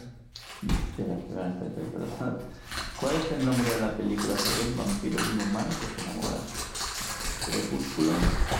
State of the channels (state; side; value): identical; both; correlation 1.00